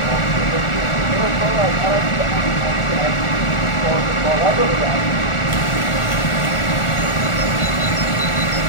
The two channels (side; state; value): right; late; 1.4 ms